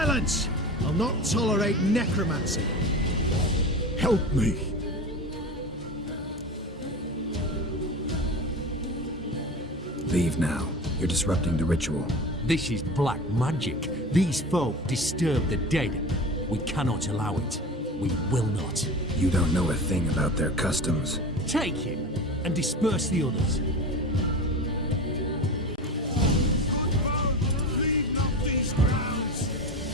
I'll not tolerate necromancy. Help me! Leave now. You're disrupting the ritual. This is black magic. These folk disturb the dead. We cannot allow it. We will not. You don't know a thing about their customs. Take him and disperse the others.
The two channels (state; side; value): normal; both; correlation 0.30